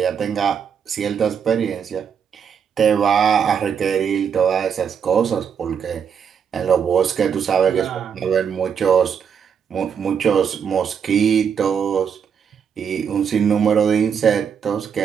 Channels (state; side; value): quieter; left; 7.3 dB